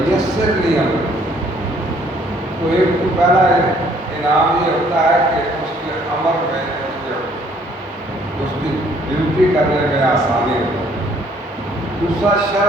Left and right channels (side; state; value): both; normal; correlation 0.62